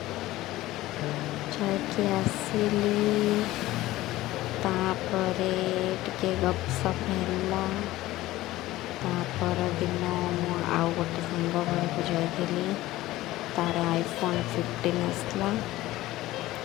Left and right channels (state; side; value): quieter; right; 16.8 dB